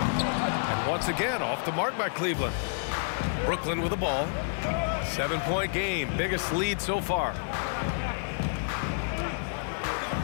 And once again, off the mark by Cleveland. Brooklyn with the ball. 7-point game, biggest lead so far.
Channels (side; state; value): right; silent; digital silence